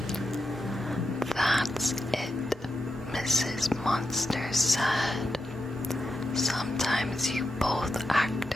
That's it, Mrs. Monster said. Sometimes you both act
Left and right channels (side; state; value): both; normal; correlation 0.87